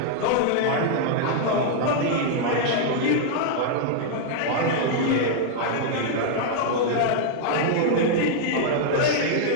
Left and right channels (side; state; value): both; different; correlation 0.00